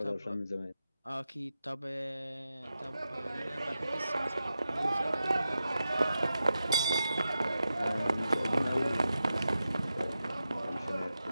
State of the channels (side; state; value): both; inverted; correlation -0.90